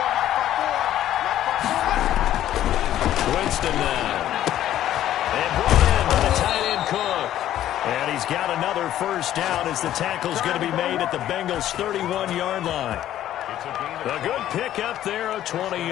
Winston now. And brought in by the tight end Cook. And he's got another first down as the tackle's going to be made at the Bengals' 31-yard line. A good pickup there of 20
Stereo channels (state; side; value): quieter; right; 12.3 dB